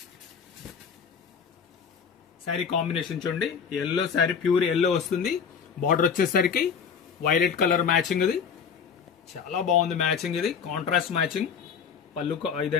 శారీ కాంబినేషన్ చూడండి, ఎల్లో శారీ, ప్యూర్ ఎల్లో వస్తుంది. బార్డర్ వచ్చేసరికి వైలెట్ కలర్ మ్యాచింగ్. ఇది చాలా బాగుంది మ్యాచింగ్, ఇది కాంట్రాస్ట్ మ్యాచింగ్. పళ్ళు,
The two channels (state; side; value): quieter; right; 6.7 dB